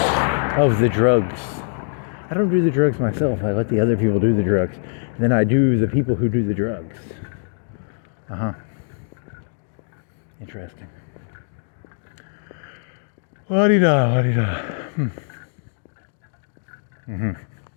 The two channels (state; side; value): silent; right; digital silence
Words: of the drugs. I don't do the drugs myself. I let the other people do the drugs. Then I do the people who do the drugs. Interesting. La-di-da, la-di-da.